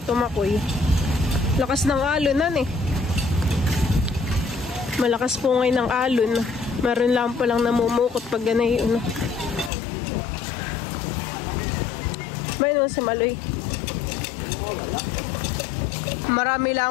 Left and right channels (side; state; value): right; drops out; at 9.7 s